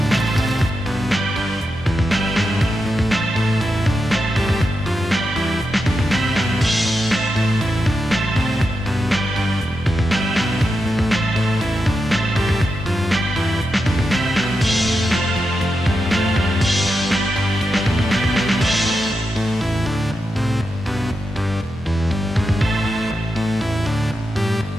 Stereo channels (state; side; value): normal; both; correlation 0.87